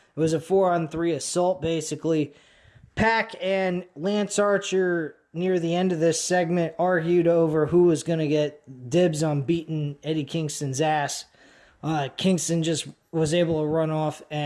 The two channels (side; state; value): both; identical; correlation 1.00